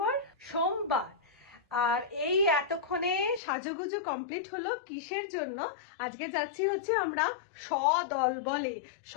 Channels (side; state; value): right; drops out; at 3.4 s